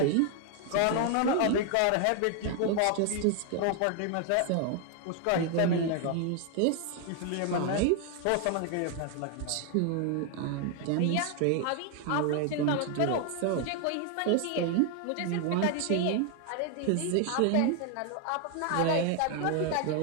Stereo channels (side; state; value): both; different; correlation 0.00